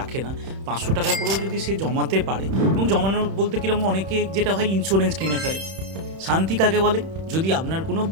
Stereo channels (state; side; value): late; left; 31 ms